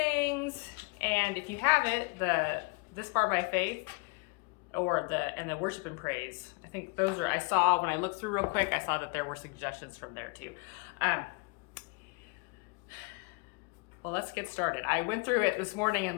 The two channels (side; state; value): right; quieter; 29.9 dB